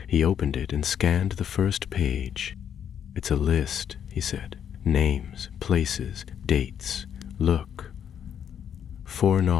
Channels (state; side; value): quieter; right; 8.8 dB